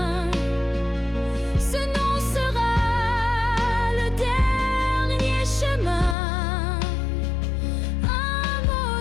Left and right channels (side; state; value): right; drops out; at 6.2 s